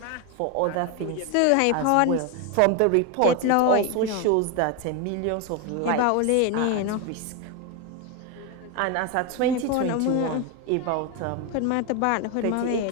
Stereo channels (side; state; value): both; different; correlation 0.02